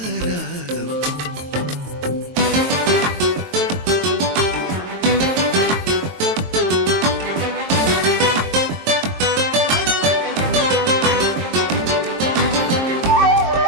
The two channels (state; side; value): late; left; 22 ms